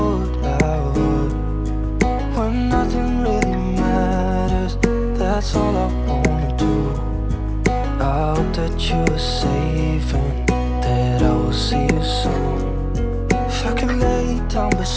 I would. When nothing really matters, that's all I wanna do. I hope that you are safe and that I will see you soon. If I could lay down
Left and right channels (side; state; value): both; identical; correlation 1.00